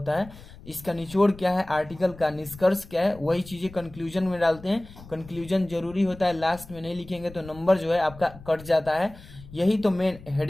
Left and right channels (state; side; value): noise; left; rumble, 18 dB below the sound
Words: है, इसका निचोड़ क्या है, आर्टिकल का निष्कर्ष क्या है, वही चीजें कंक्लूजन में डालते हैं। कंक्लूजन जरूरी होता है, लास्ट में नहीं लिखेंगे तो नंबर जो है आपका कट जाता है। यही तो मेन